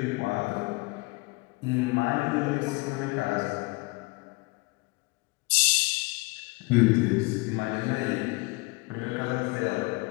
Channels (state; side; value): quieter; right; 25.1 dB